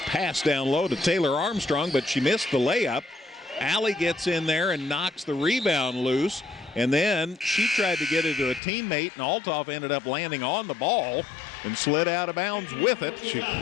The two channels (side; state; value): right; drops out; at 8.6 s